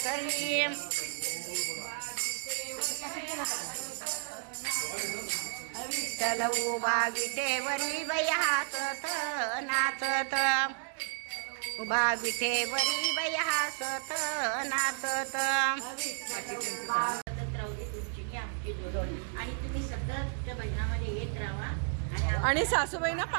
विठ्ठल उभा विटेवरी बाई हसत नाचत, उभा विटेवरी बाई हसत नाचत. आणि तुम्ही सतत त्या भजनामध्ये येत राहा आणि सासूबाईंना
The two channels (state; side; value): silent; left; 56 dB below the other